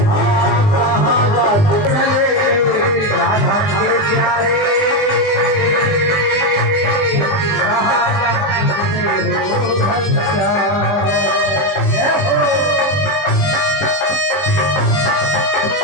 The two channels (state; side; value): late; right; 20 ms